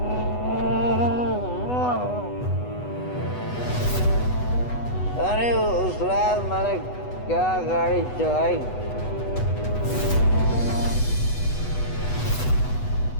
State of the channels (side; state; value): right; late; 8.1 ms